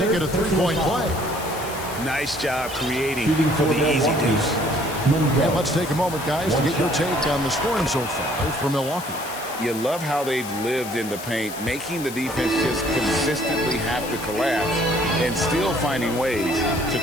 it a three-point play. Nice job creating for the easy deuce. And let's take a moment, guys, to get your take on the scoring so far for Milwaukee. You love how they've lived in the paint, making the defense just consistently have to collapse and still finding ways to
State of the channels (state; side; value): noise; left; hiss, 12 dB below the sound